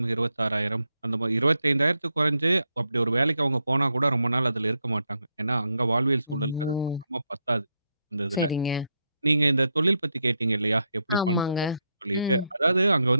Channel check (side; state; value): both; inverted; correlation -0.80